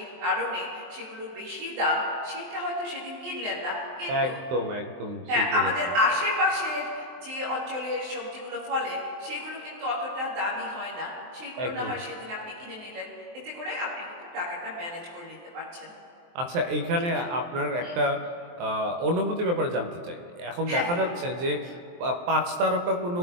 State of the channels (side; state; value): left; late; 23 ms